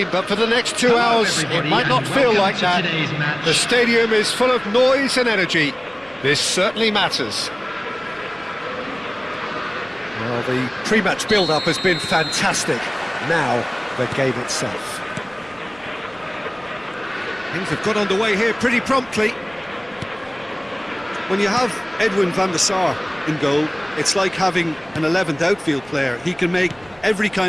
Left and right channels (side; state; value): right; noise; rumble, 27 dB below the sound